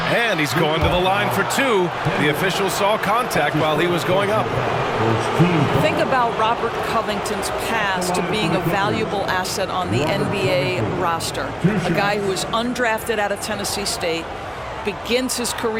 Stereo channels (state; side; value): identical; both; correlation 1.00